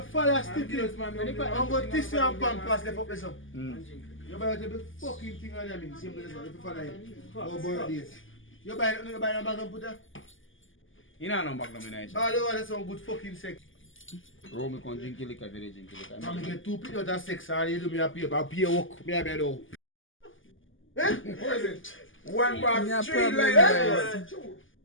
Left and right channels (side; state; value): right; late; 0.58 ms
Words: follow Stiff, I'm going to tissue and pampers left up there. You buy the fucking thing on them. Simple as that. If you follow it. Go birthdays. You buy a bag and put that? You know no back no me nice. All the one that's some good fucking sex. Romy can drink liquor, very drink liquor. I'm going to get 2 people of sex and you do me a pay. I'll pay work. Me a bed out. Eh? What is it? One bar, Yeah, 3 problem, lines. guys.